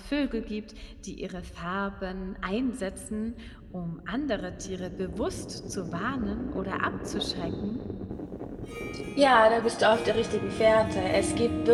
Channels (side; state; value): both; identical; correlation 1.00